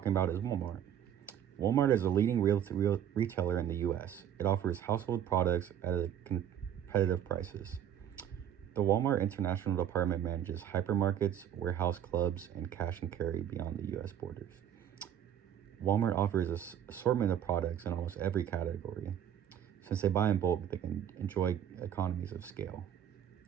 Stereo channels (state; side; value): quieter; left; 9.7 dB